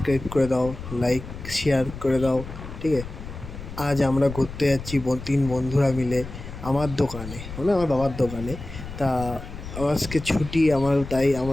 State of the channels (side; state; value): left; noise; rumble, 11 dB below the sound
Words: করে দাও, লাইক শেয়ার করে দাও। ঠিক আছে, আজ আমরা ঘুরতে যাচ্ছি তিন বন্ধুরা মিলে আমার দোকানে, মানে আমার বাবার দোকানে। তা আজকে ছুটি আমার, তাই